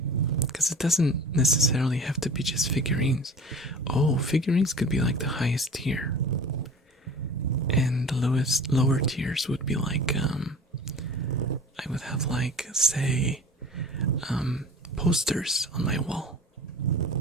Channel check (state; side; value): normal; both; correlation 0.40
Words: because it doesn't necessarily have to be just figurines. Oh, figurines could be like the highest tier, and the lower tiers would be like I would have like, say, posters on my wall,